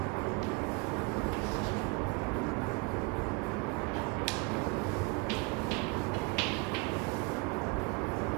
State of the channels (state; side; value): quieter; left; 27.8 dB